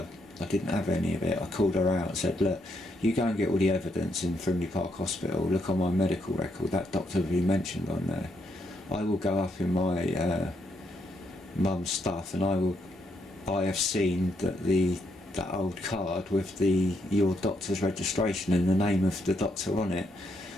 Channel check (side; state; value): both; normal; correlation 0.77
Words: didn't have any of it. I called her out and said, look, you go and get all the evidence in Frimley Park Hospital, look on my medical record, that doctor will be mentioned on there. I will go up in my mum's stuff, and I have seen that old card with your doctor's registration and the name of the doctor on it.